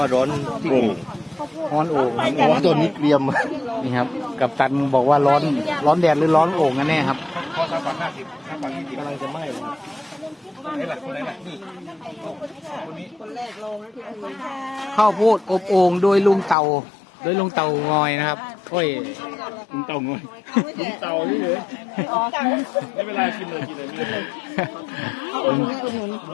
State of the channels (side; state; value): right; drops out; at 16.6 s